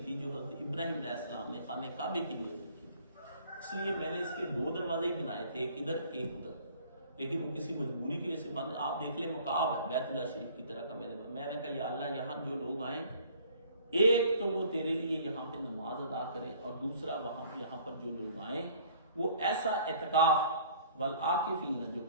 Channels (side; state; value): both; inverted; correlation -0.54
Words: تھی جو حضرت ابراہیم علیہ السلام نے خانہ کعبے کی نیت رکھی تھی، اس لیے میں نے اس کے 2 دروازے ہی بنائے تھے، ایک ادھر ایک ادھر، لیکن وہ کسی مجبوری کی وجہ سے بند۔ آپ دیکھ لیں مقاب ہے بیت اللہ شریف کی طرح کا، میں نے کہا یا اللہ یہاں جو لوگ آئیں، ایک تو وہ تیرے لیے یہاں پہ نماز ادا کریں، اور دوسرا یہاں پر جو لوگ آئیں وہ ایسا اعتکاف والعاکفین جو